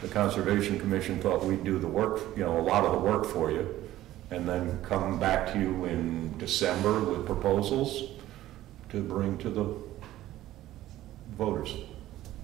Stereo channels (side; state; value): left; quieter; 14.4 dB